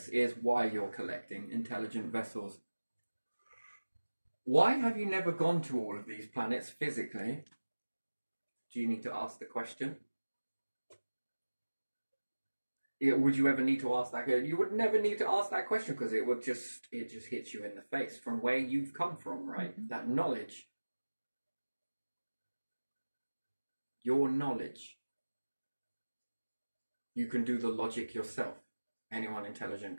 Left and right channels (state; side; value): inverted; both; correlation -1.00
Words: is why you're collecting intelligent vessels. Why have you never gone to all of these planets physically? Do you need to ask the question? Would you ever need to ask that? You would never need to ask that question, because it just hits you in the face from where you've come from, right? Mm-hmm. That knowledge. Your knowledge. You can do the logic yourself. Anyone intelligent